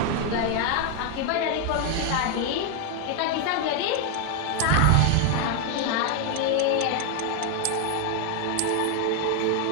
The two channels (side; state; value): both; different; correlation 0.01